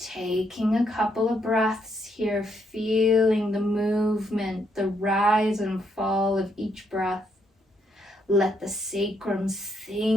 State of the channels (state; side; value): normal; both; correlation 0.75